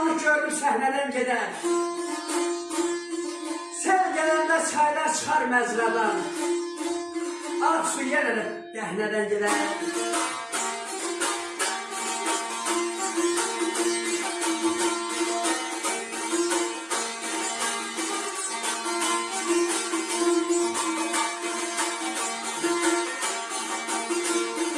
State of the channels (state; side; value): identical; both; correlation 1.00